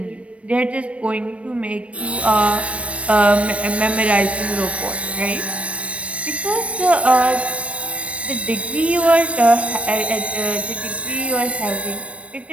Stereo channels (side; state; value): left; late; 0.063 ms